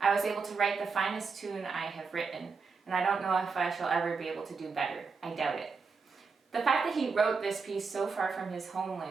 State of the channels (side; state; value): left; quieter; 4.9 dB